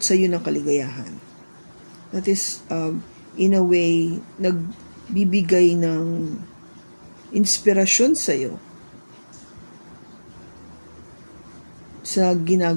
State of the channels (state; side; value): inverted; both; correlation -1.00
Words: sa iyo ng kaligayahan. That is, in a way, nagbibigay ng inspirasyon sa iyo sa